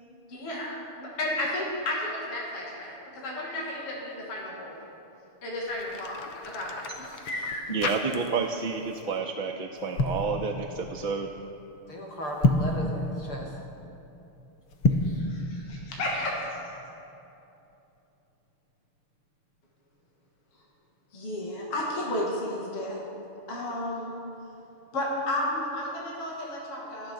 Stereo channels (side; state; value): right; late; 6.7 ms